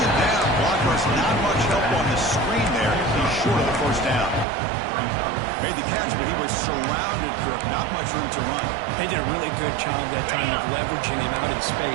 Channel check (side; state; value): left; drops out; at 4.5 s